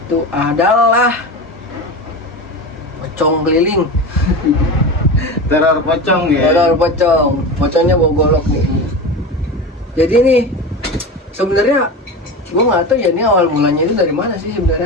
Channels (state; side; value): normal; both; correlation 0.26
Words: adalah pocong keliling. Teror pocong ya. Teror pocong. Pocongnya bawa golok nih. Jadi nih sebenarnya gua nggak tahu ya, ini awal mulanya itu dari mana sih